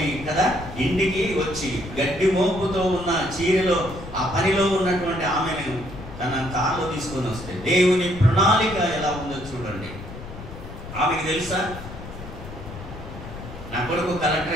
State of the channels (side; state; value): left; noise; rumble, 12 dB below the sound